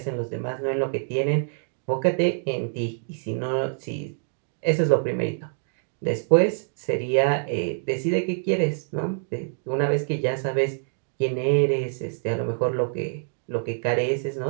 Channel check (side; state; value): left; silent; digital silence